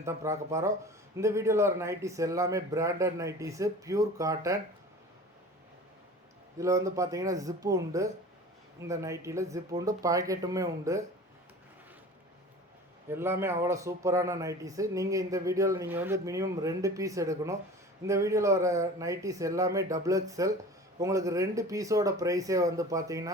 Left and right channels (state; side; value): normal; both; correlation 0.39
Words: தான் பார்க்க போகிறோம். இந்த வீடியோவில் வர நைட்டிஸ் எல்லாமே பிராண்டட் நைட்டிஸு, பியூர் காட்டன். இதில் பார்த்தீங்கன்னா ஜிப்பு உண்டு. இந்த நைட்டியில் ஜிப்பு உண்டு, பாக்கெட்டுமே உண்டு. எல்லாமே அவ்வளோ சூப்பரான நைட்டிஸு. நீங்கள் இந்த வீடியோவில் நீங்கள் மினிமம் 2 பீஸ் எடுக்கணும். இந்த வீடியோவில் வர நைட்டிஸ் எல்லாமே டபுள் எக்ஸ்எல். உங்களுக்கு 2 பீஸோட ப்ரைஸே